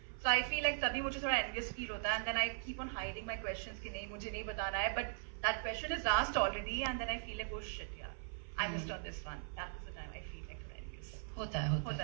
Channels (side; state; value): left; silent; 51 dB below the other